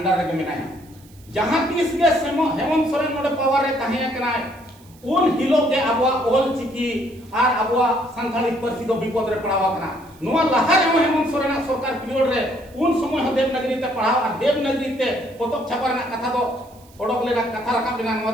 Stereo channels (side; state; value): right; noise; hiss, 27 dB below the sound